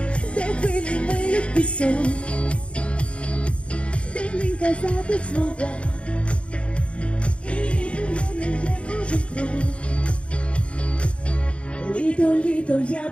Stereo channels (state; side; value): late; right; 0.060 ms